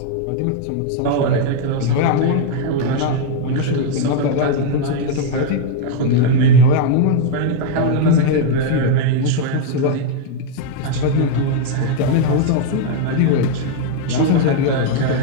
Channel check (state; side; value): different; both; correlation 0.00